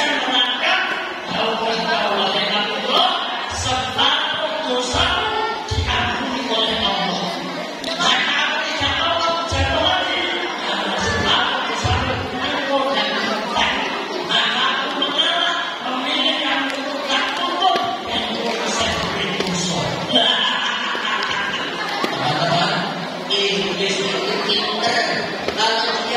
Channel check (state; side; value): identical; both; correlation 1.00